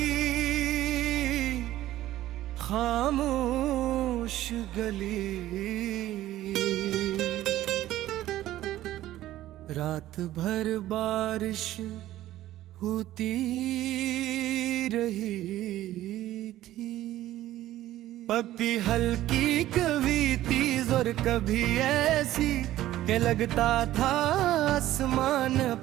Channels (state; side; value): quieter; left; 14.4 dB